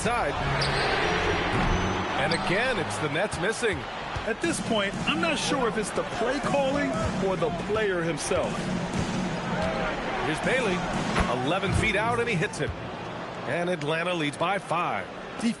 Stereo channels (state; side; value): identical; both; correlation 1.00